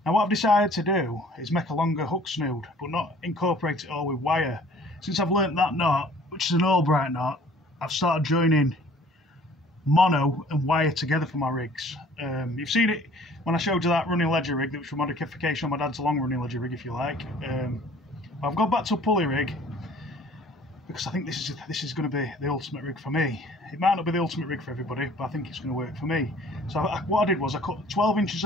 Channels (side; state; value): both; normal; correlation 0.53